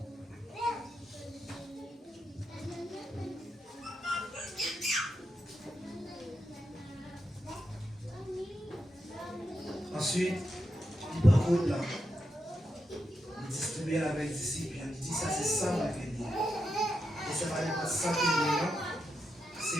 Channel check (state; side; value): normal; both; correlation 0.85